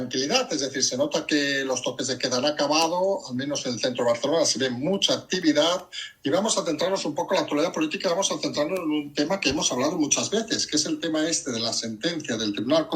es decir, se nota que los toques de queda han acabado, al menos en el centro de Barcelona se ve mucha actividad y vamos a centrarnos un poco en la actualidad política, vamos a centrarnos en un tema que hemos hablado muchas veces, que es el tema este de la sentencia del Tribunal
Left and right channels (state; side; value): identical; both; correlation 1.00